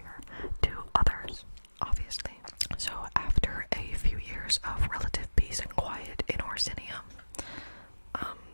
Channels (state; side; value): inverted; both; correlation -1.00